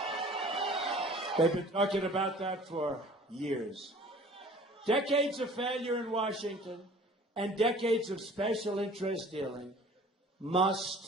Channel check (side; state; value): both; normal; correlation 0.48